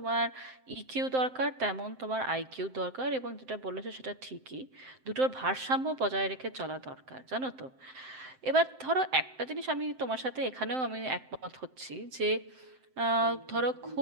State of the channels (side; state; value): left; late; 7.7 ms